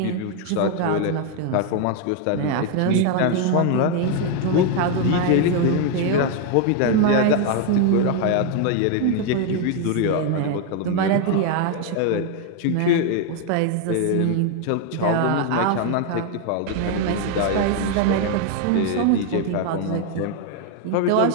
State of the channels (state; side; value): different; both; correlation 0.01